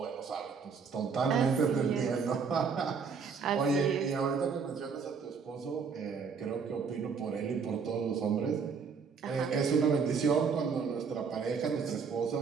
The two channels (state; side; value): quieter; left; 5.7 dB